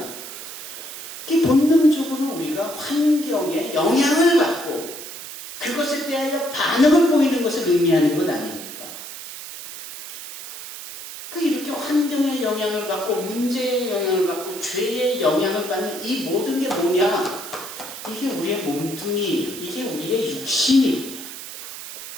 그 본능적으로 우리가 환경에 영향을 받고 그것에 대하여 반응을 보이는 것을 의미하는 것 아닙니까? 이렇게 환경의 영향을 받고 문제의 영향을 받고 죄의 영향을 받는 이 모든 게 뭐냐? 이게 우리의 몸뚱이예요. 이게 우리의 육신입니다.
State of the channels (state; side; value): noise; right; hiss, 11 dB below the sound